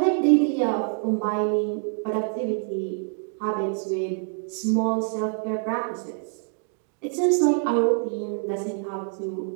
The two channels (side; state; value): left; silent; 55 dB below the other